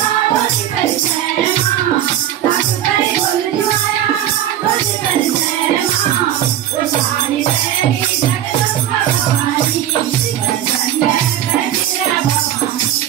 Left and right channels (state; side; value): quieter; left; 11.5 dB